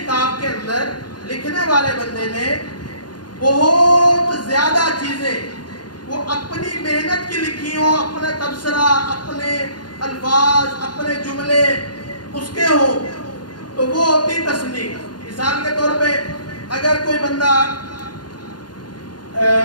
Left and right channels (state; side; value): late; right; 0.70 ms